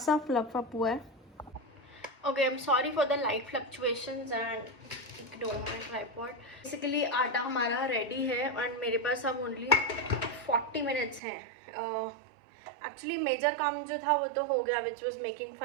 फ्लफ अप हुआ है। Okay, I am sorry for the light fluctuations and ignore my tripod. Basically आटा हमारा रेडी है एंड मेरे पास अब ओनली 40 मिनट्स है। एक्चुअली मेजर काम जो था वो तो हो गया, विच वॉज मेकिंग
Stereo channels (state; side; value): drops out; left; at 11.2 s